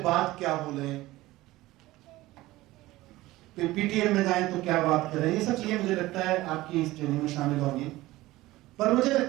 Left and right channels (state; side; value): quieter; left; 17.9 dB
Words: क्या बोलें, PTM में जाएं तो क्या बात करें। ये सब चीजें मुझे लगता है आपकी इस ट्रेनिंग में शामिल होंगी। पर मुझे